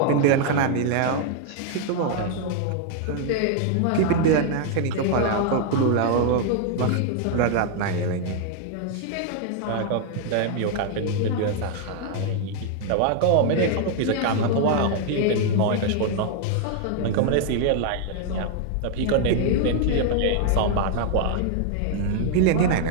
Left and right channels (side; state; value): both; different; correlation 0.00